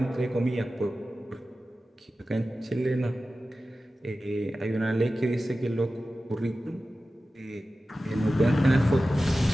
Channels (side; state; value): both; normal; correlation 0.95